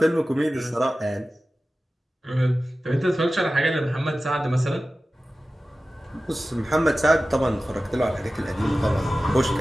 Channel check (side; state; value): both; normal; correlation 0.95